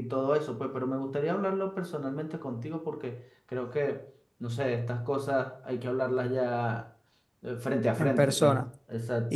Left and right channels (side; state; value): both; identical; correlation 1.00